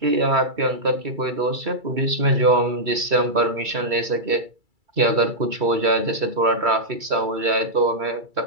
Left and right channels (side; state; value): left; late; 2.3 ms